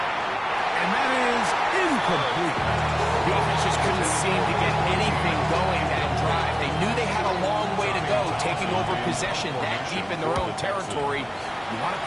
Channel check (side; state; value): both; identical; correlation 1.00